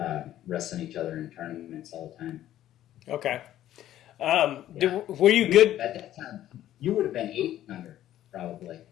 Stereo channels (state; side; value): quieter; right; 12.7 dB